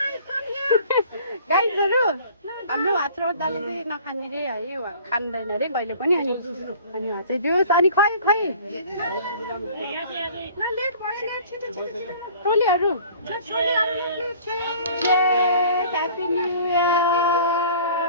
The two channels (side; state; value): both; inverted; correlation -0.49